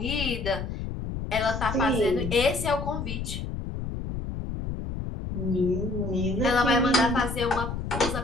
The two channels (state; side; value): noise; left; rumble, 5 dB below the sound